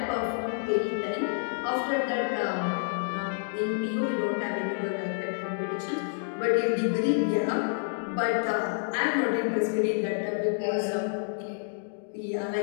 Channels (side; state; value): right; silent; digital silence